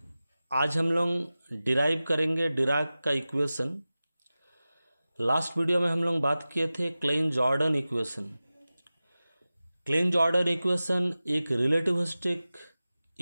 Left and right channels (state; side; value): inverted; both; correlation -0.96